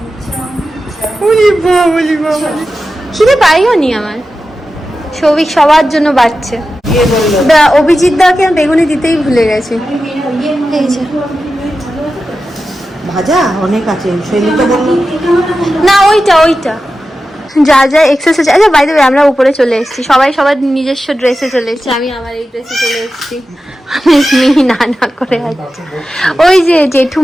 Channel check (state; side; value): normal; both; correlation 0.92